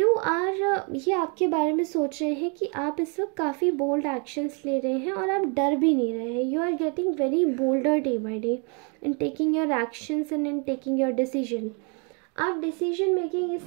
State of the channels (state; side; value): quieter; left; 36.4 dB